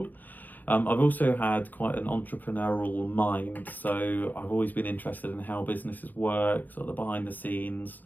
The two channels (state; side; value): late; right; 0.085 ms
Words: I've also had quite an entrepreneurial mind, so I've always been interested in how businesses work, sort of the behind the scenes.